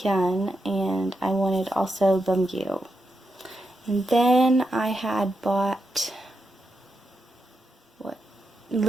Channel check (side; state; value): both; normal; correlation 0.86